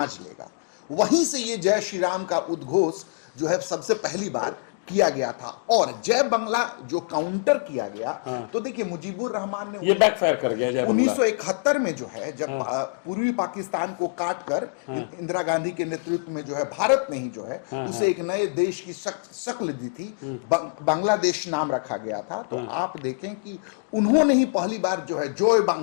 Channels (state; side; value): quieter; right; 38.5 dB